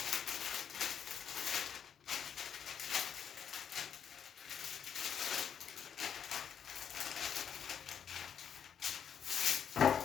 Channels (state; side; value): quieter; right; 8.2 dB